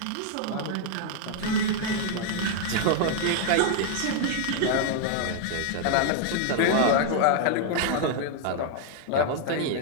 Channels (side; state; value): both; different; correlation 0.00